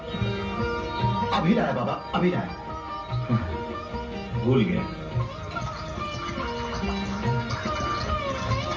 अभी लाया बाबा, अभी लाया। भूल गया।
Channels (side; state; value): both; identical; correlation 1.00